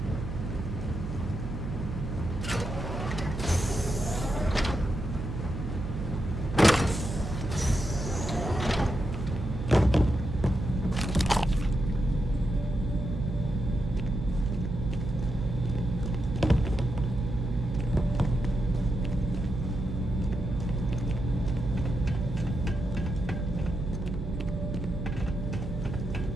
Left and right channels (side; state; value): right; noise; hum, 6 dB below the sound